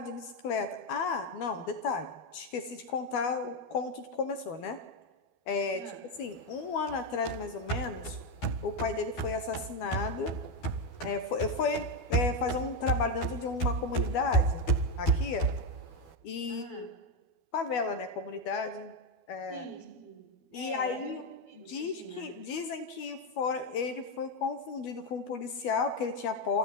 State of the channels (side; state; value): right; late; 12 ms